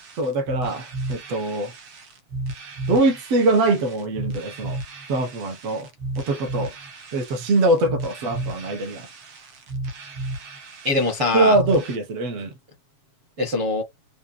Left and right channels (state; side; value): late; left; 7.3 ms